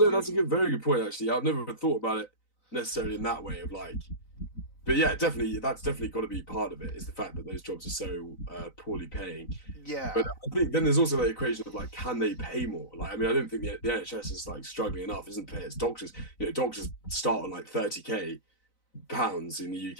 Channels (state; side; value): late; right; 3.9 ms